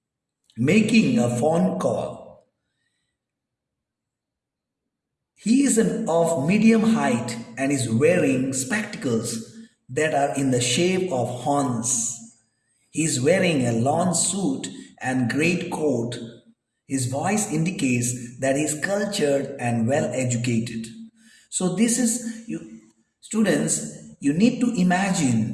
making a phone call. He is of medium height and is wearing spectacles that are in the shape of horns. He is wearing a lawn suit and great coat. His voice indicates that he is cultured and well educated. So this is, students, you need to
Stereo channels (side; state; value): both; identical; correlation 1.00